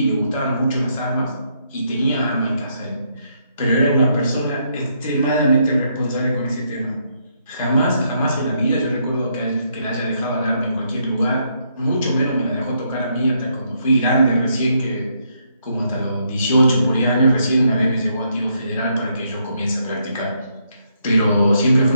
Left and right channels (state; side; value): inverted; both; correlation -0.75